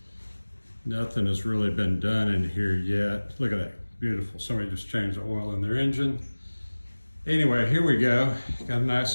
Nothing has really been done in here yet. Look at that, beautiful. Somebody just changed the oil in their engine. Anyway, here we go. Got a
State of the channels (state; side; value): inverted; both; correlation -1.00